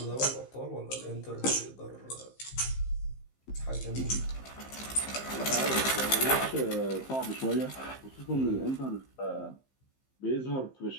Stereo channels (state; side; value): late; right; 15 ms